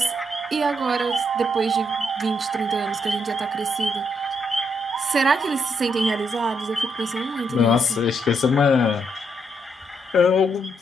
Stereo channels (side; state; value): both; normal; correlation 0.77